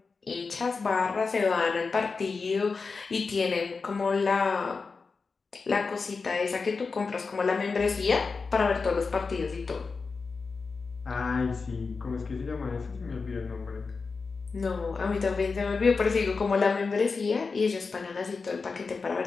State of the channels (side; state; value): right; quieter; 4.6 dB